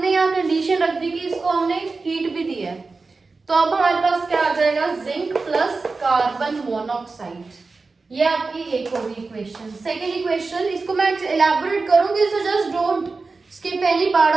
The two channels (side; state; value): left; quieter; 4.0 dB